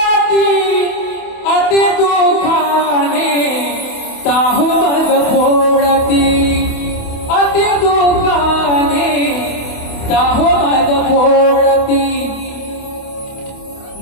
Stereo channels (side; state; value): right; late; 28 ms